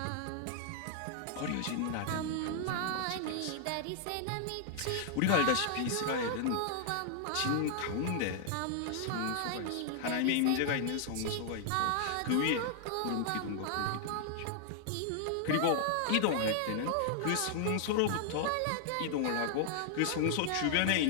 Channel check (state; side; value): different; both; correlation -0.01